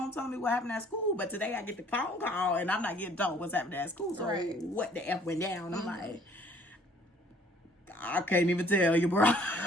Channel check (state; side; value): normal; both; correlation 0.58